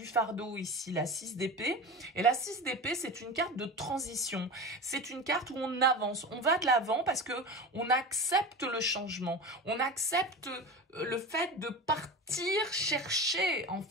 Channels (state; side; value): normal; both; correlation 0.28